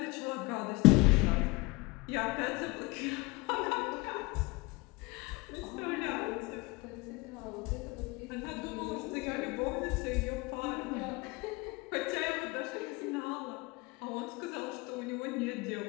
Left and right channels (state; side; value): quieter; right; 24.8 dB